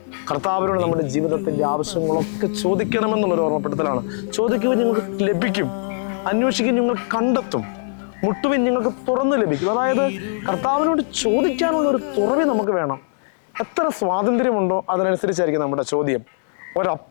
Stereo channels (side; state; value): right; silent; digital silence